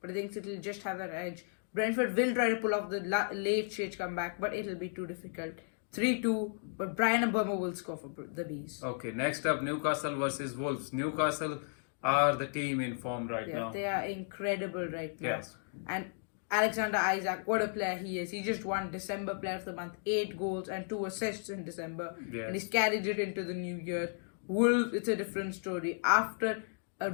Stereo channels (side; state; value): right; silent; 55 dB below the other